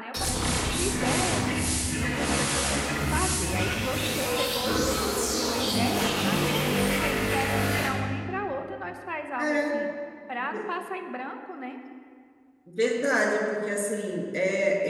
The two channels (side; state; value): both; identical; correlation 1.00